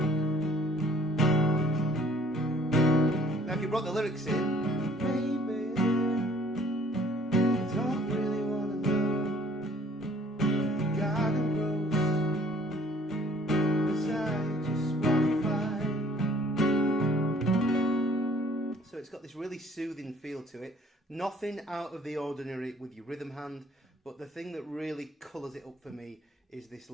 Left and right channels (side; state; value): both; normal; correlation 0.57